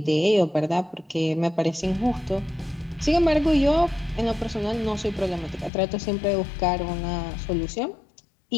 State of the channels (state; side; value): drops out; right; at 5.7 s